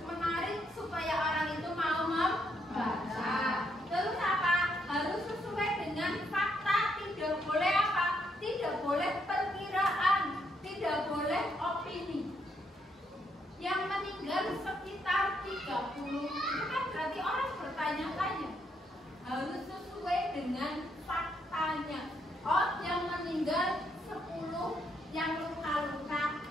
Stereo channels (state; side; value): normal; both; correlation 0.75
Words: menarik supaya orang itu mau membaca. Terus apa? Harus sesuai dengan fakta. Tidak boleh apa? Tidak boleh perkiraan. Tidak boleh opini. Yang meninggal sekitar 30, itu kan berarti orang bertanya-tanya. Harus sesuai dengan faktanya. Oh, yang meninggal 10, yang luka-luka